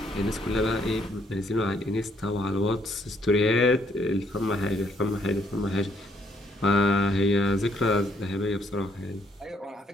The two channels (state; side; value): normal; both; correlation 0.69